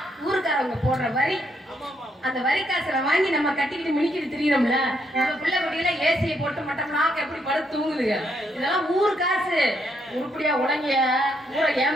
ஊருக்காரவங்க போடுற வரி. அந்த வரி காசுல வாங்கி நம்ம கட்டிக்கிட்டு மினிக்கிட்டு திரியறோம்ல. நம்ம பிள்ளை குட்டியில ஏசியை போட்டு மட்டம்னா எப்படி படுத்து தூங்குதுங்க. இதெல்லாம் ஊர் காசு. உருப்படியா உடங்கிய ஊரை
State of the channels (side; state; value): both; normal; correlation 0.75